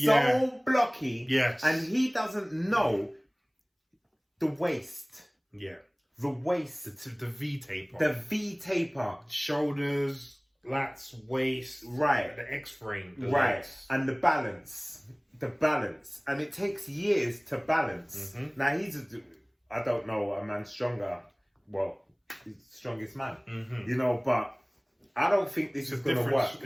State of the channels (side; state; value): both; identical; correlation 1.00